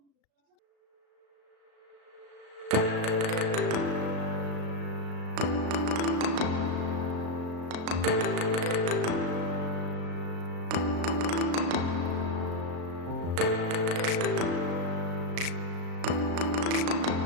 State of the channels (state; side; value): late; left; 36 ms